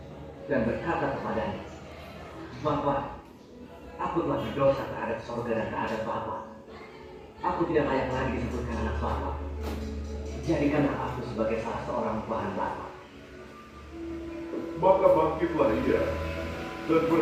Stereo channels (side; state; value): both; identical; correlation 1.00